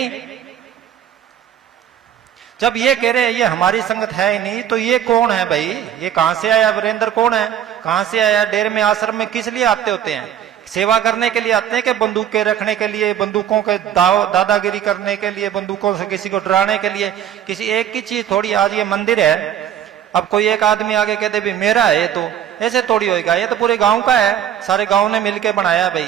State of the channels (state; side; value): quieter; left; 10.1 dB